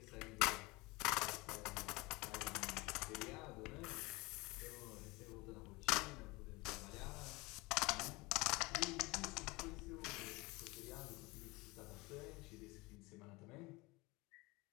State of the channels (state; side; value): quieter; right; 23.5 dB